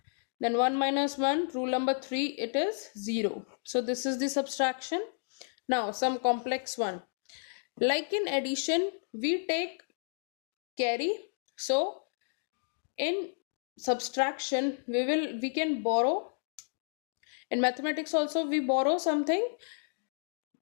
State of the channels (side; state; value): right; silent; digital silence